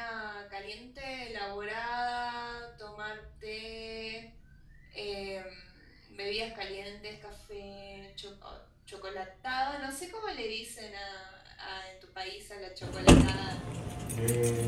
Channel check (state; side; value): identical; both; correlation 1.00